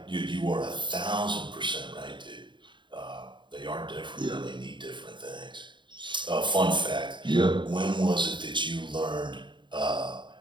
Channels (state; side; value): late; left; 0.23 ms